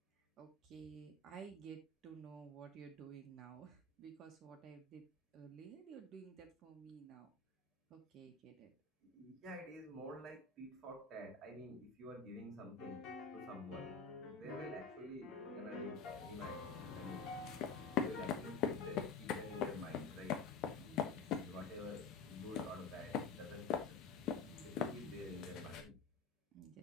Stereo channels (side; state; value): right; quieter; 4.8 dB